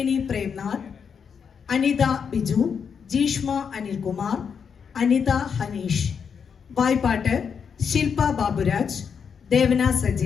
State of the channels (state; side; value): quieter; right; 6.7 dB